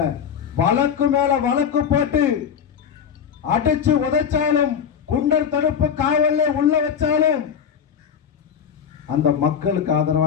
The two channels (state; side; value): quieter; right; 7.6 dB